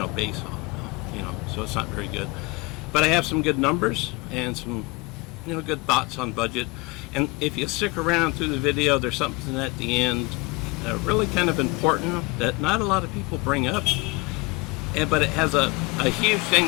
base on, so it's not very good. But I have some good numbers and some good thoughts on budget. And if you stick around through the video, there's something at the end really kind of important that not a lot of people bring up, but it has a huge thing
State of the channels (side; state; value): right; quieter; 26.1 dB